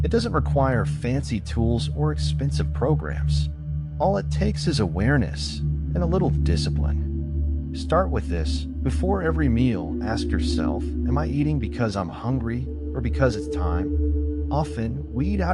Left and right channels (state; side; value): identical; both; correlation 1.00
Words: It doesn't require fancy tools or expensive programs. All it takes is awareness and a little discipline. Start with this. Before every meal, ask yourself, am I eating because I'm hungry or because it's time? Often, we eat